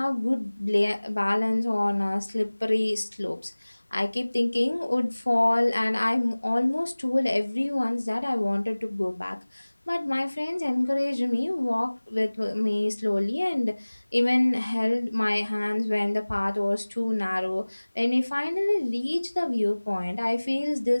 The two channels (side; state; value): both; inverted; correlation -1.00